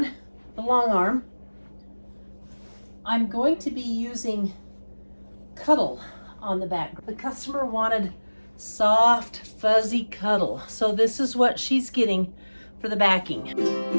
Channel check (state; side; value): inverted; both; correlation -1.00